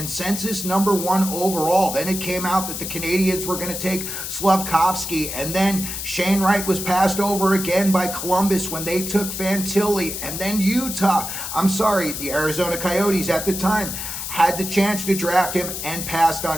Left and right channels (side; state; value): left; noise; hiss, 6 dB below the sound